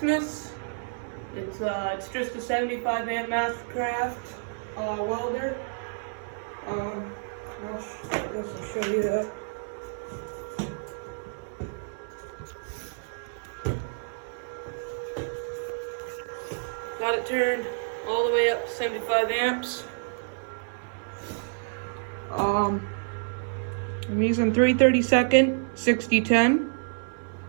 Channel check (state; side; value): silent; left; 59 dB below the other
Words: It's just a 75 amp Mastercraft welder. I guess I'll show you that. Got it turned all the way up to 75 amps. I'm using 3/32 6010,